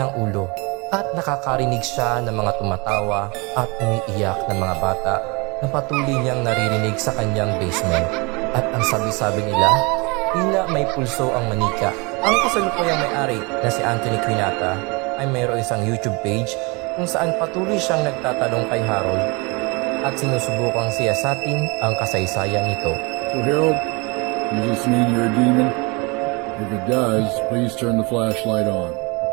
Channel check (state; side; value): quieter; left; 28.4 dB